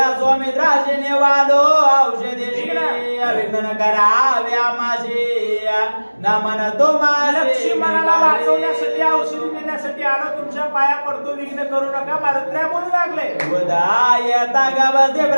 स्वामित्राजीने वालो औषधी विघ्न कराव्या माझी नमन तुम्हाला. लक्ष्मणाला वाचवण्यासाठी औषधी देण्यासाठी आलो. तुमच्या पाया पडतो विघ्न करू नका. मारुद्रा बोलू लागले. उदायता गवते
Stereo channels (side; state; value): both; inverted; correlation -1.00